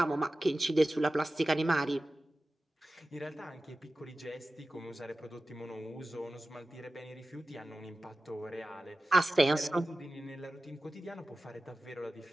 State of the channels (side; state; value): both; normal; correlation 0.95